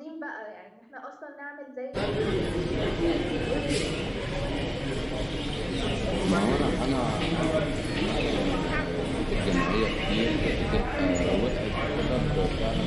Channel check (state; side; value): identical; both; correlation 1.00